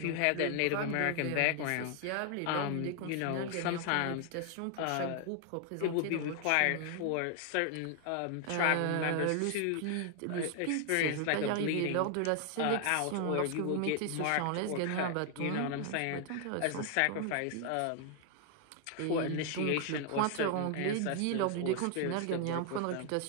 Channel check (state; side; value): different; both; correlation 0.00